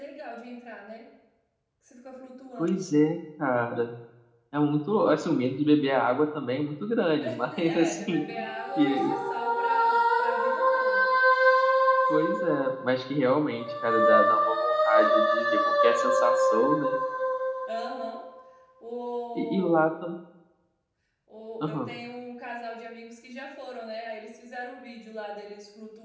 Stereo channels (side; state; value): both; identical; correlation 1.00